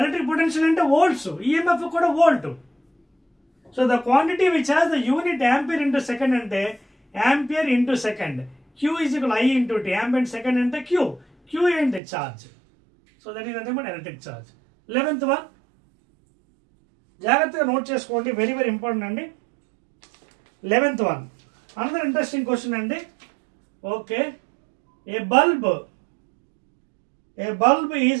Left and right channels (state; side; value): drops out; left; at 12.0 s